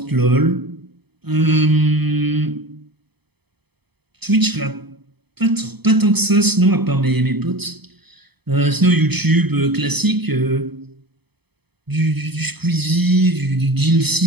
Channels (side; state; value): left; late; 0.98 ms